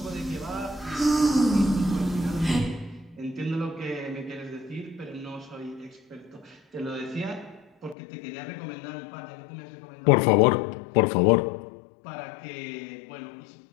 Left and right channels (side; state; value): right; drops out; at 8.0 s